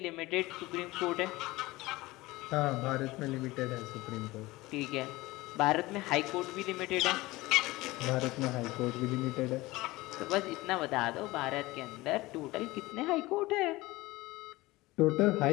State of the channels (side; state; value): right; quieter; 20.0 dB